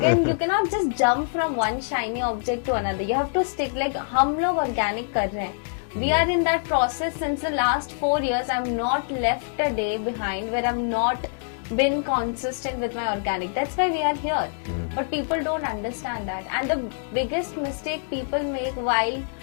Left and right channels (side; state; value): right; silent; 62 dB below the other